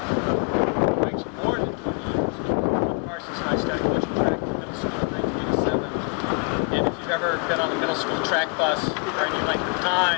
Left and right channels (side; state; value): right; quieter; 36.6 dB